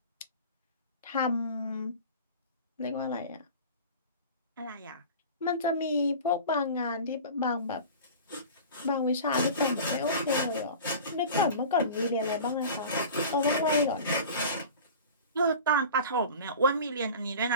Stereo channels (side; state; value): both; inverted; correlation -0.37